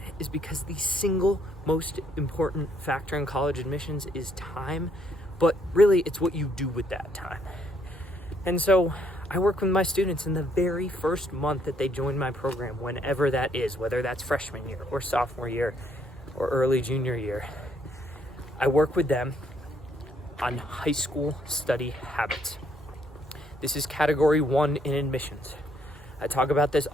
is because the single most important factor in college admissions is time, but really it's what you do with that time. And so I work with my students in the very first month that they join my program, whenever that is, whether that's freshman year or sophomore year or early junior year. I work with them on high school study habits. This is category 1 in admissions. I talk about this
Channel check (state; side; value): normal; both; correlation 0.70